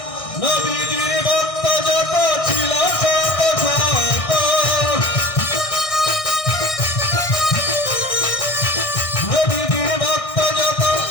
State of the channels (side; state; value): right; late; 1.6 ms